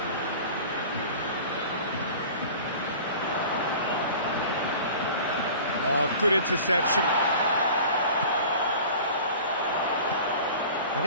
Oh, good interception. And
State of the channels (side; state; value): both; inverted; correlation -0.41